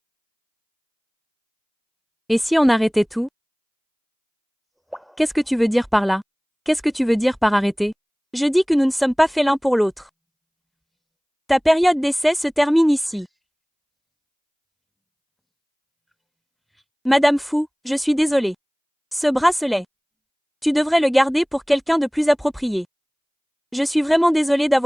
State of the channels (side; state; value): both; identical; correlation 1.00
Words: Et si on arrêtait tout? Qu'est-ce que tu veux dire par là? Qu'est-ce que tu veux dire par arrêter? Je dis que nous ne sommes pas faits l'un pour l'autre. Ta période d'essai se termine ici. Madame Fou, je suis désolée. Ce bracelet. Tu devrais le garder pour quelqu'un de plus approprié. Je suis vraiment désolée